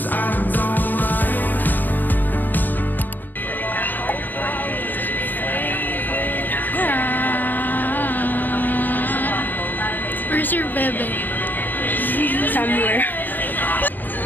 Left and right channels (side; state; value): right; late; 0.087 ms